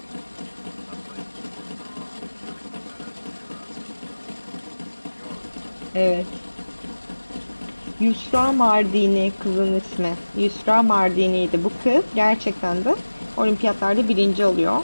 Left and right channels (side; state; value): both; inverted; correlation -1.00